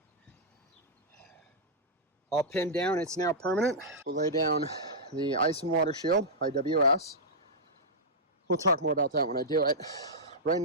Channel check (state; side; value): normal; both; correlation -0.09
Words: All pinned down. It's now permanent. We'll lay down the ice and water shield, IWS. We'll talk more about that when I do it. Right